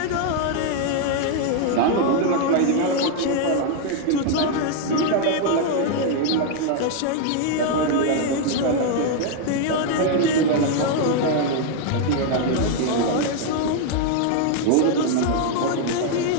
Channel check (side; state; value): both; different; correlation 0.00